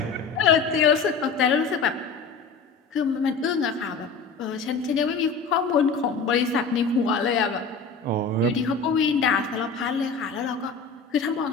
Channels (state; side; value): quieter; right; 4.9 dB